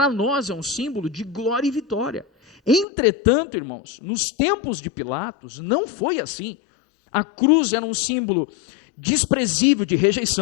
nós é um símbolo de glória e vitória. Entretanto, irmãos, nos tempos de Pilatos, não foi assim. A cruz era um símbolo desprezível de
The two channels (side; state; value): right; drops out; at 2.9 s